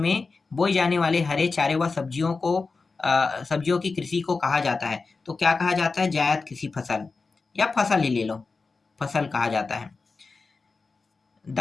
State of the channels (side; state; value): right; quieter; 4.2 dB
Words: बोई जाने वाले हरे चारे व सब्जियों की कृषि को कहा जाता है, तो क्या कहा जाता है, जायद कृषि फसल, या फसल ही ले लो, फसल कहा जाता है।